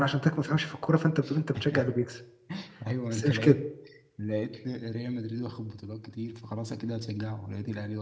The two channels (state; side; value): identical; both; correlation 1.00